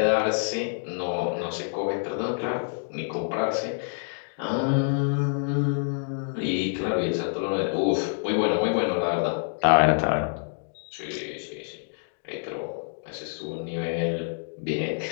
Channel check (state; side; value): silent; right; digital silence